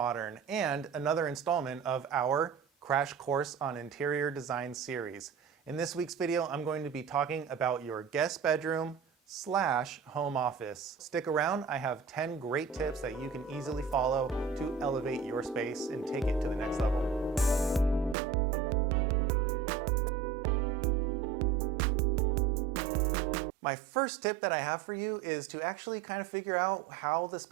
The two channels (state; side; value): drops out; left; at 18.2 s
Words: and another installment of our Crash Course on Interior Design series. In this week's video, I'm going to be talking about your guest bedroom / home office. Stick around, I have 10 great tips that you can easily follow to elevate your space and take it to the next level. My first tip that I have for you is to actually kind of figure out how the